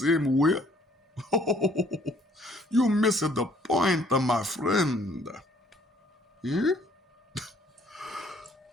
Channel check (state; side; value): normal; both; correlation 0.61